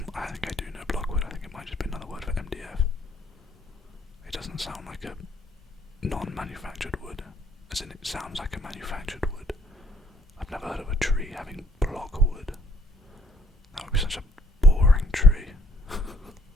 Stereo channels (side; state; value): both; normal; correlation 0.65